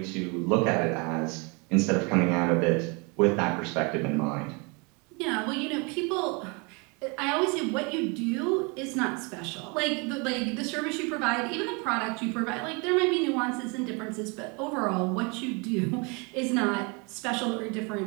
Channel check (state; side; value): quieter; left; 31.1 dB